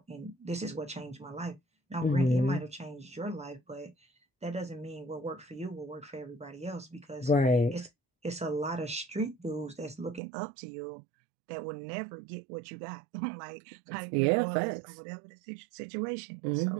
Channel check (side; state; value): left; drops out; at 10.2 s